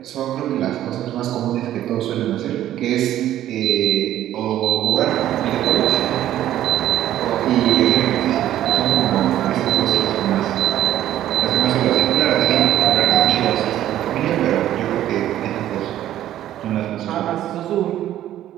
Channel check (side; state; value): left; quieter; 12.5 dB